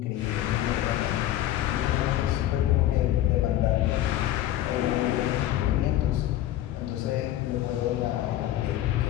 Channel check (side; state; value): right; quieter; 13.2 dB